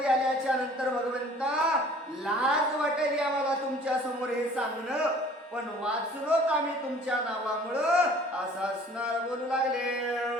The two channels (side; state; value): both; normal; correlation 0.51